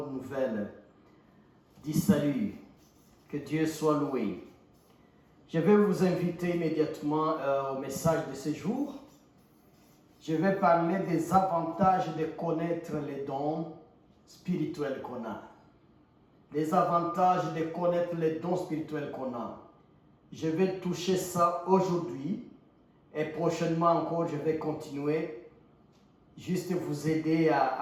nouvelle du salut. Que Dieu soit loué. Je vais vous inviter immédiatement au message de ce jour. Je vais parler des avantages de connaître les dons spirituels qu'on a. Les avantages de connaître les dons spirituels qu'on a. Je vais toucher ça aujourd'hui et prochainement encore je vais continuer. Juste vous aider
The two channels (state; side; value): identical; both; correlation 1.00